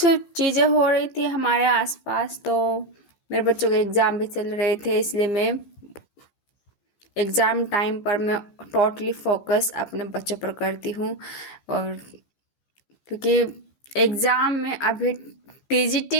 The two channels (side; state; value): right; late; 15 ms